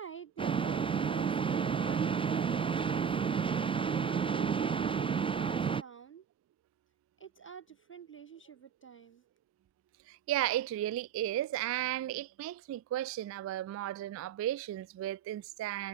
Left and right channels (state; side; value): quieter; left; 7.7 dB